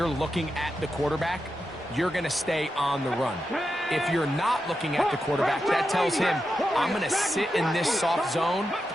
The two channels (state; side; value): normal; both; correlation 0.88